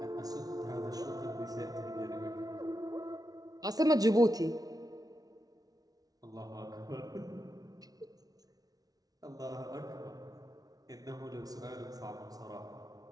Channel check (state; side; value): late; left; 0.18 ms